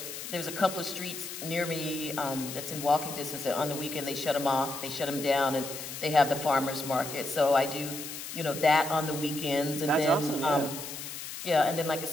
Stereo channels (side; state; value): left; noise; hiss, 9 dB below the sound